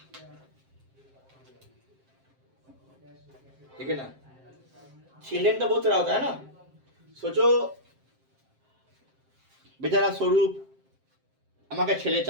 ठीक है ना, चिल्ड्रन तो बहुत तरह होता है ना, सोचो बेचारा स्वरूप আমাকে ছেলে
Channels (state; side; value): late; left; 7.6 ms